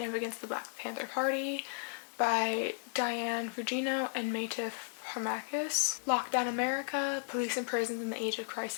of the Black Panther Party by Diane Fugino and Matif Harmakis. Lockdown America, Police and Prisons in the Age of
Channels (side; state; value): right; silent; 55 dB below the other